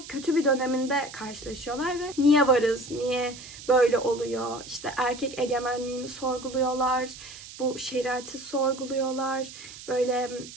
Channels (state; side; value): noise; right; hiss, 15 dB below the sound